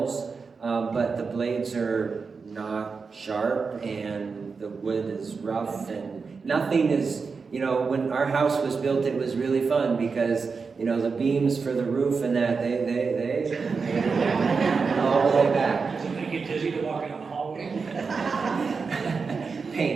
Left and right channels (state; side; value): quieter; left; 5.0 dB